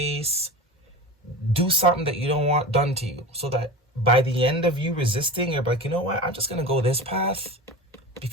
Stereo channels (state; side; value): normal; both; correlation 0.30